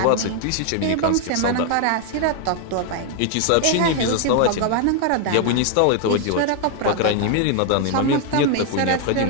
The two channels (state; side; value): different; both; correlation 0.00